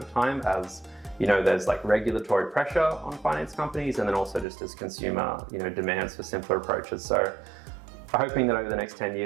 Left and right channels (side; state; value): left; drops out; at 4.5 s